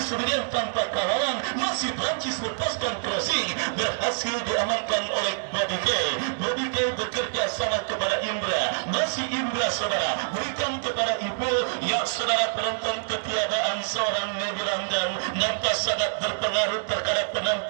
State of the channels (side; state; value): left; silent; digital silence